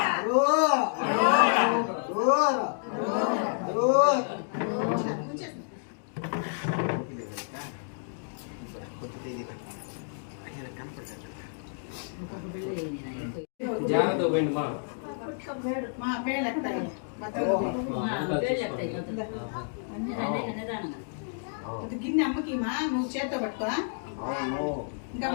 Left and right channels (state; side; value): silent; right; digital silence